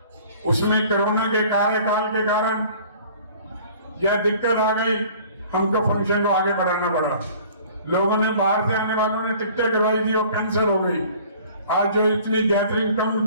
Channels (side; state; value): both; inverted; correlation -0.50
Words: उसमें कोरोना के कार्यकाल के कारण यह दिक्कत आ गई, हमको फंक्शन को आगे बढ़ाना पड़ा। लोगों ने बाहर से आने वालों ने टिकटें करवाई थी, वो कैंसिल हो गई। आज जो इतनी गैदरिंग